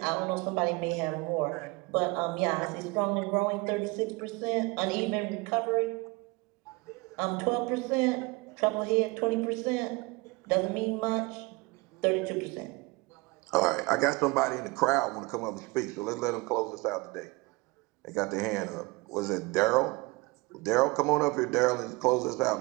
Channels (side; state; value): left; quieter; 24.9 dB